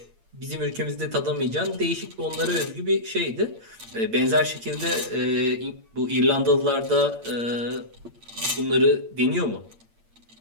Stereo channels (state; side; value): late; left; 8.7 ms